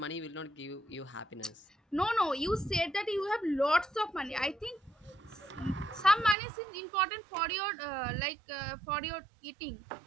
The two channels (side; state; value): left; drops out; at 6.4 s